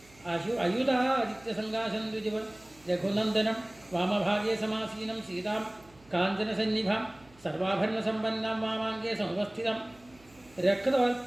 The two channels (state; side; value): noise; right; hum, 28 dB below the sound